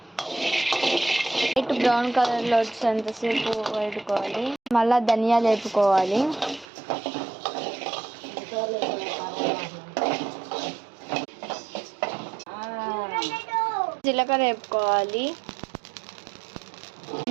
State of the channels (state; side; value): drops out; left; at 6.7 s